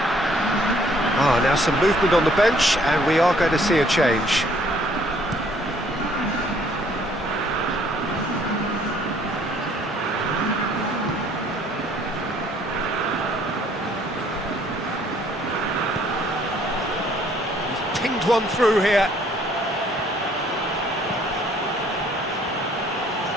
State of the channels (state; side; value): normal; both; correlation 0.61